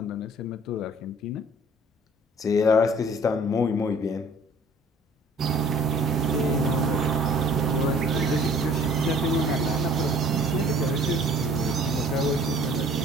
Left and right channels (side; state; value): both; normal; correlation 0.53